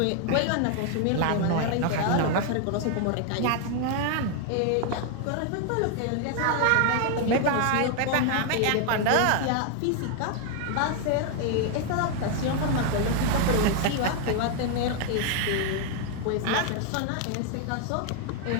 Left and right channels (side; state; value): both; different; correlation 0.00